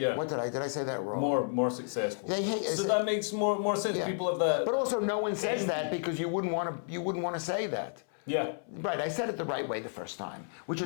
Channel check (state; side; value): silent; right; 57 dB below the other